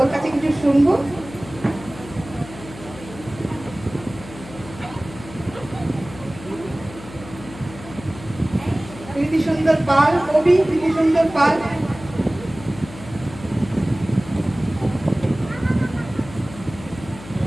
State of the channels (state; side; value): noise; left; hum, 16 dB below the sound